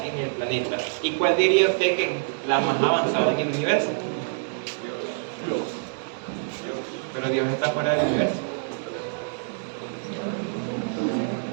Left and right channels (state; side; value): silent; left; digital silence